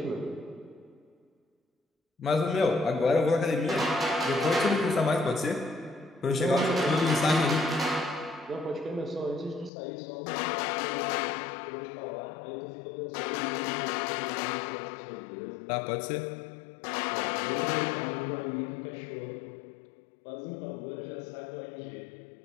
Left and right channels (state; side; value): drops out; right; at 9.7 s